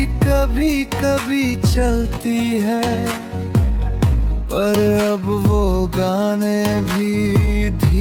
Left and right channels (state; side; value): identical; both; correlation 1.00